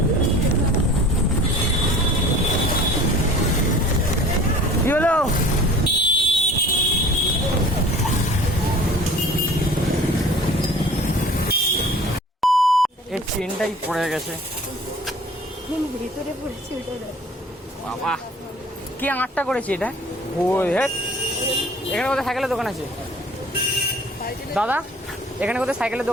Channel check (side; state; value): both; normal; correlation 0.46